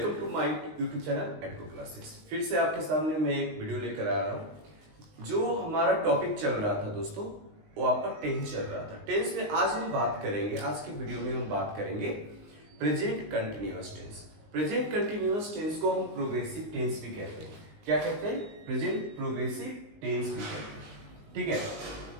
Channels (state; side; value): late; left; 19 ms